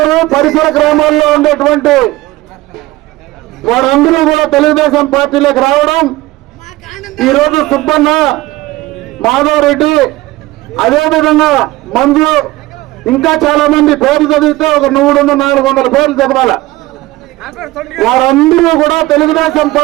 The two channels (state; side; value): quieter; left; 18.4 dB